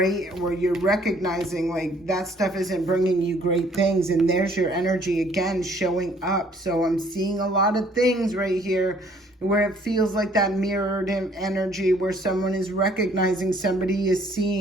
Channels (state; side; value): normal; both; correlation 0.60